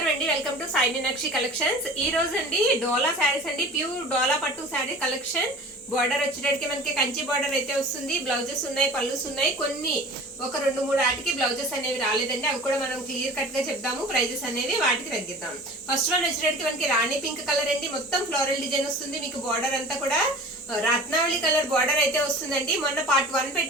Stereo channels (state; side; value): normal; both; correlation 0.40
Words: అండి. Welcome to Sai Meenakshi collections. ఈ రోజు అండి డోలా శారీస్ అండి, ప్యూర్ డోలా పట్టు శారీ కలెక్షన్. బార్డర్ వచ్చేటప్పటికి మనకి కంచి బార్డర్ అయితే వస్తుంది. బ్లౌజెస్ ఉన్నాయి, పళ్ళుస్ ఉన్నాయి. కొన్ని ఒక 2-3 ఆటికి బ్లౌజెస్ అనేవి రాలేదండి. అవి కూడా మనం క్లియర్ కట్ గా చెప్దాము. ప్రైజెస్ అనేవి వాటికి తగ్గిద్దాం. ఫస్ట్ వన్ వచ్చేటప్పటికి మనకి రాణి పింక్ కలర్ అండి. మొత్తం ఫ్లోరల్ డిజైన్ వస్తుంది. మీకు బార్డర్ అంతా కూడా రత్నావళి కలర్ బార్డర్ అయితే వస్తుందండి. మొన్న పార్ట్ 1